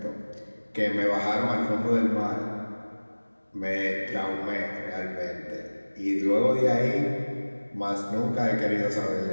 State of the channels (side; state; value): both; inverted; correlation -1.00